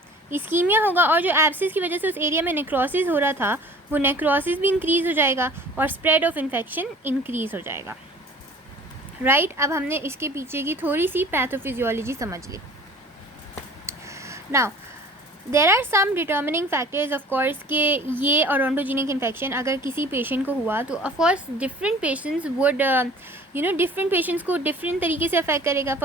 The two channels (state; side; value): normal; both; correlation 0.47